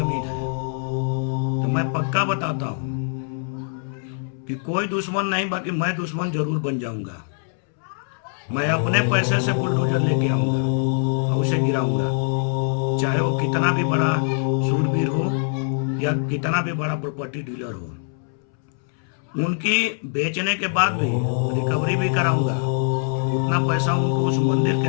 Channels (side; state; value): right; silent; 63 dB below the other